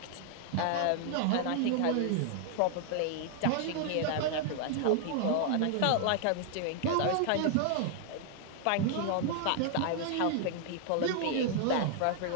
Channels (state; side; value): different; both; correlation 0.00